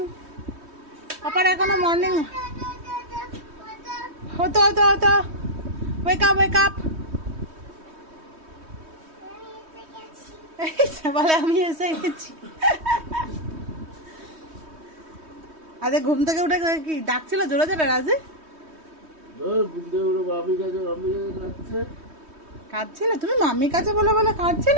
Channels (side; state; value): left; late; 3.2 ms